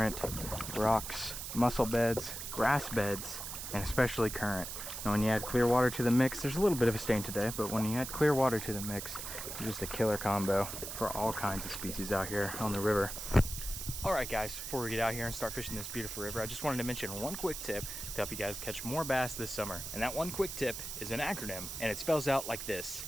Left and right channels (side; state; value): right; noise; hiss, 7 dB below the sound